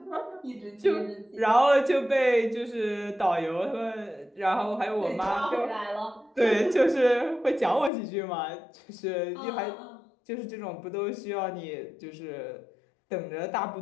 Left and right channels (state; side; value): drops out; right; at 7.9 s